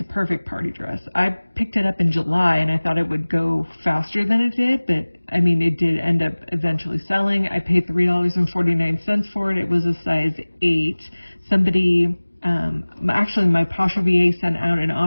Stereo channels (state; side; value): inverted; both; correlation -1.00